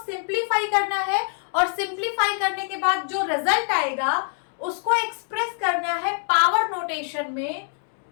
सिंप्लीफाई करना है और सिंप्लीफाई करने के बाद जो रिजल्ट आएगा उसको एक्सप्रेस करना है पावर नोटेशन में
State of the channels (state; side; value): silent; right; 55 dB below the other